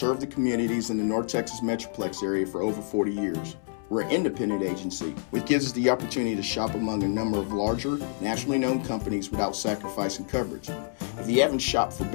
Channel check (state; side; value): silent; right; 60 dB below the other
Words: the communities in the North Texas Metroplex area for over 40 years. We're an independent agency, which gives us the opportunity to shop among a number of larger, nationally known companies without sacrificing coverage. If you haven't shopped for